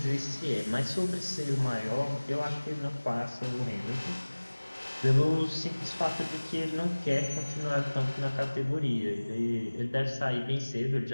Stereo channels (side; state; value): both; inverted; correlation -1.00